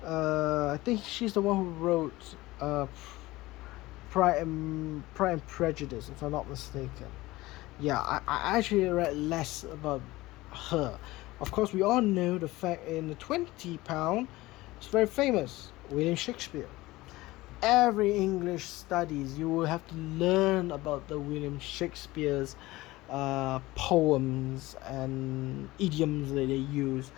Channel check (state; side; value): quieter; right; 19.1 dB